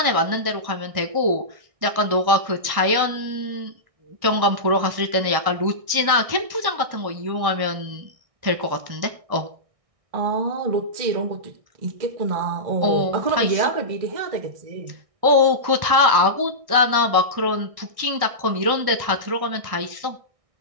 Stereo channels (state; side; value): late; left; 1.6 ms